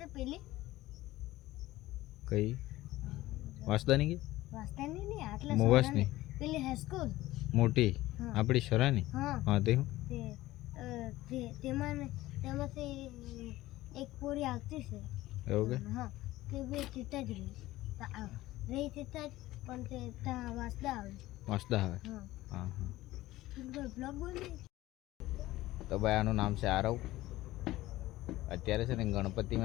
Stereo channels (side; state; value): right; quieter; 16.9 dB